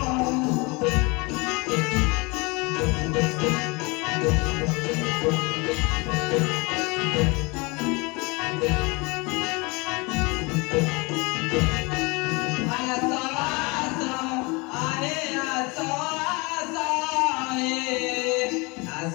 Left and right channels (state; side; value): quieter; right; 27.0 dB